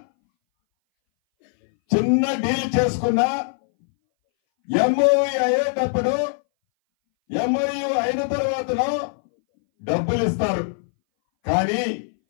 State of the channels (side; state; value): right; silent; 61 dB below the other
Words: చిన్న డీల్ చేసుకున్నా ఎంఓయు అయ్యేటప్పుడు ఎంఓయు అయిన తర్వాతనో డబ్బులు ఇస్తారు. కానీ